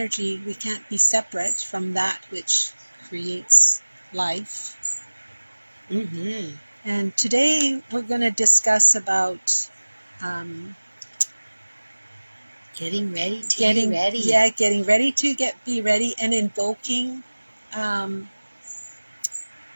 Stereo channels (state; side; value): inverted; both; correlation -1.00